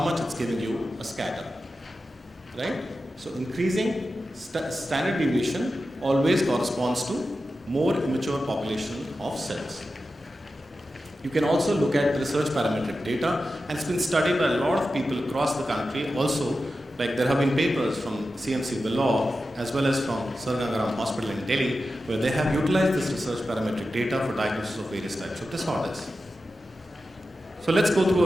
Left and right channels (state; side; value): normal; both; correlation 0.92